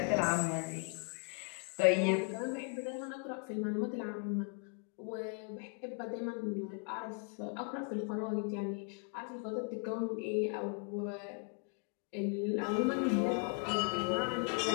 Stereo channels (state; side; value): quieter; right; 35.8 dB